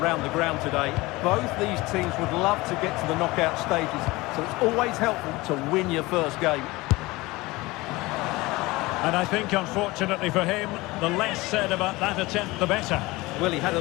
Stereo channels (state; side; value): quieter; right; 21.3 dB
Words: the ground today. Both these teams would love to get to the knockout stages, so it's always helpful to win your first game. And I think, unfortunately for him, the less said about that attempt, the better. Well, he had a